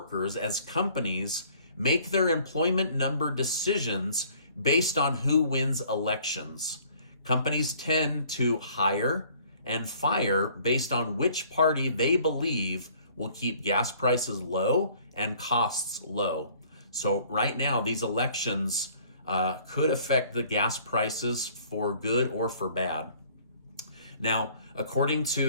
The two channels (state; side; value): inverted; both; correlation -0.56